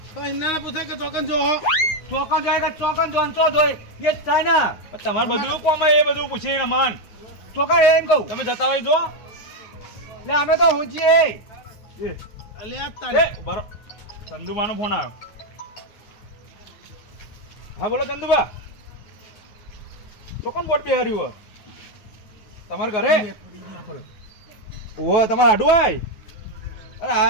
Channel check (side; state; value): right; late; 9.5 ms